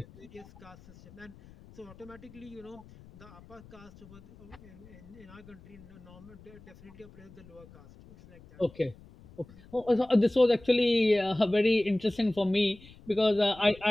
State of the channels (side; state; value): left; noise; rumble, 22 dB below the sound